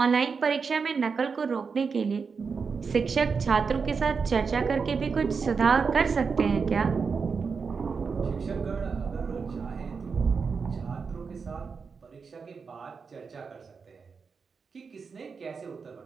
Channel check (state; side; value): quieter; left; 5.4 dB